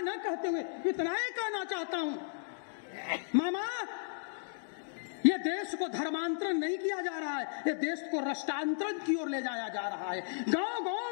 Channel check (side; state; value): right; silent; digital silence